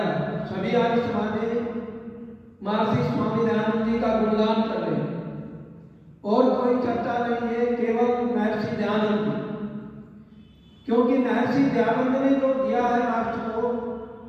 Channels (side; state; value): both; identical; correlation 1.00